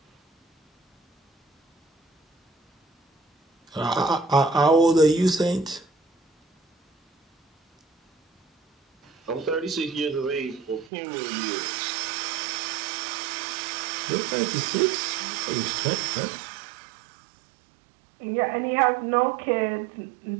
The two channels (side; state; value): left; drops out; at 10.9 s